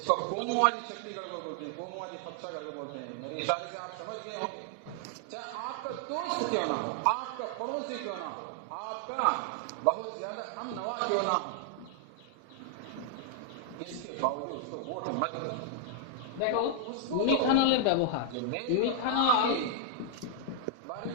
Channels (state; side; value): different; both; correlation -0.01